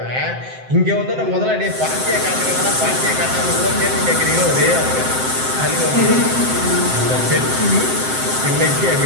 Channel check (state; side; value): late; left; 7.7 ms